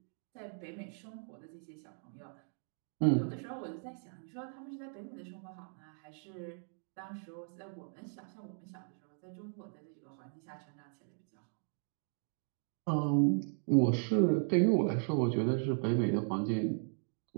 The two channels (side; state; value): left; silent; 53 dB below the other